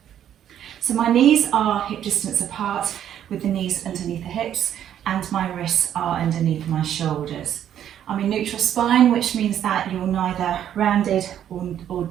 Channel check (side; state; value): left; quieter; 10.3 dB